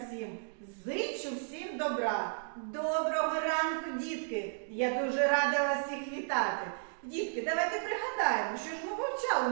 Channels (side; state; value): left; silent; digital silence